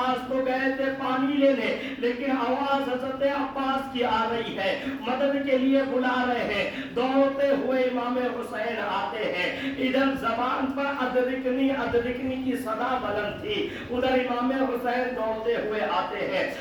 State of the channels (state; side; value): identical; both; correlation 1.00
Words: तो गए थे पानी लेने, लेकिन आवाज हजरत अब्बास की आ रही है, मदद के लिए बुला रहे हैं। दौड़ते हुए इमाम हुसैन आते हैं, इधर जबान पर अदरिकनी अदरिकनी की सदा बुलंद थी, उधर इमाम हुसैन दौड़ते हुए आते हैं,